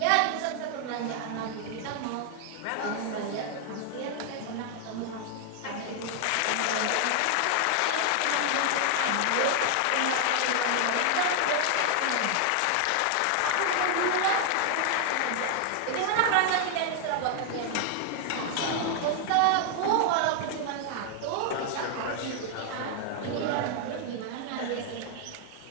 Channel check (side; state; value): both; different; correlation 0.00